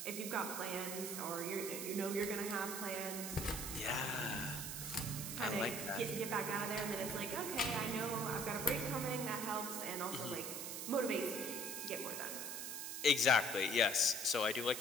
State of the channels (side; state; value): right; noise; hiss, 5 dB below the sound